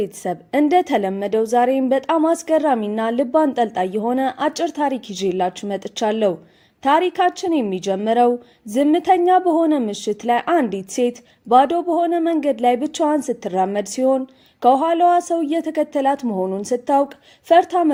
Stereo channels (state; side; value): identical; both; correlation 1.00